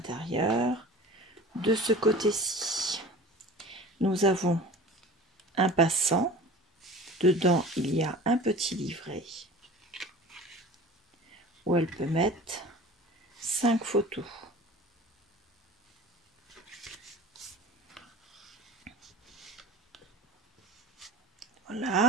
De ce côté-ci, nous avons un passant. Dedans, il y a un petit livret où elle peut mettre 5 photos.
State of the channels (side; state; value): both; normal; correlation 0.40